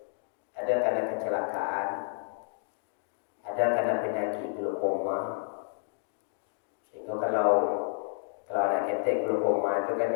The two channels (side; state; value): right; silent; digital silence